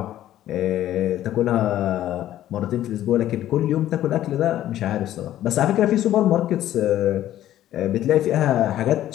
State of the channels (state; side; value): quieter; right; 12.9 dB